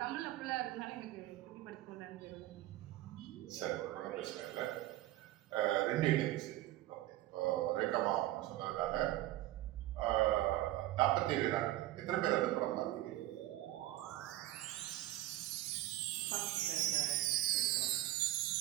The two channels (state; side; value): quieter; left; 15.6 dB